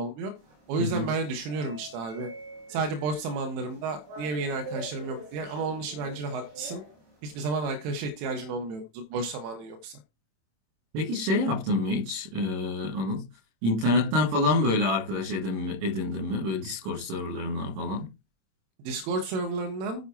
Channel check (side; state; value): left; late; 26 ms